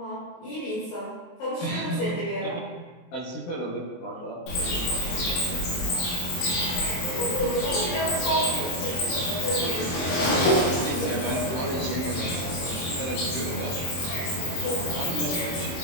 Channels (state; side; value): late; right; 23 ms